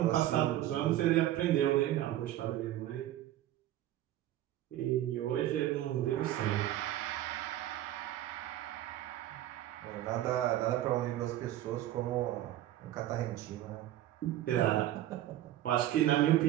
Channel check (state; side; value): quieter; left; 13.5 dB